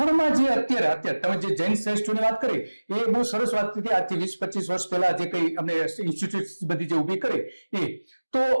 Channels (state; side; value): inverted; both; correlation -1.00